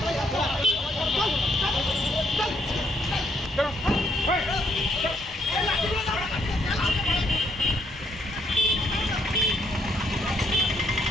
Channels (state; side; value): normal; both; correlation 0.72